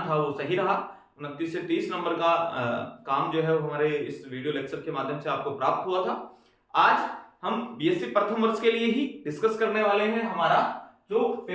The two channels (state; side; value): identical; both; correlation 1.00